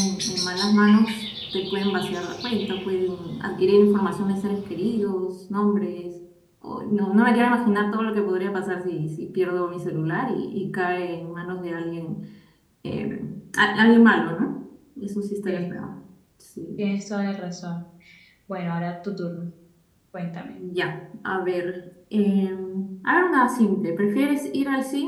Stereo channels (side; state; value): both; identical; correlation 1.00